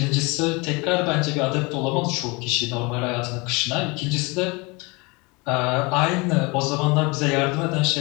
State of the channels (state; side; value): quieter; right; 27.0 dB